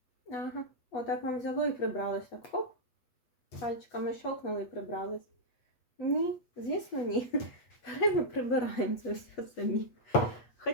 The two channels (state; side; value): late; right; 8.2 ms